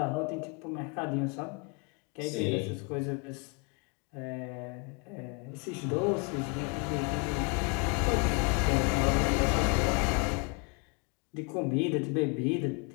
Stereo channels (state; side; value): quieter; right; 33.5 dB